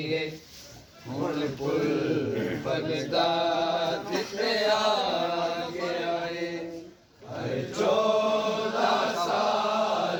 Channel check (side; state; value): both; identical; correlation 1.00